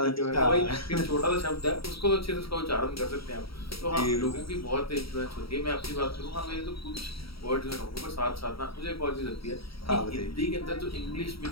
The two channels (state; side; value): late; right; 0.75 ms